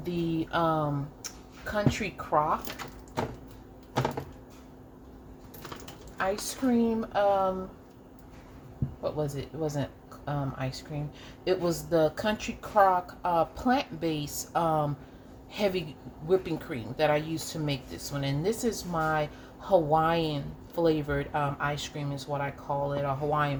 the Country Crock ice cream. What was it? It wasn't ice cream. It was the Country Crock plant-based heavy whipping cream that I used to make this one. And this is my Hawaiian flavored ice cream is what I call it, or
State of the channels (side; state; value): both; identical; correlation 1.00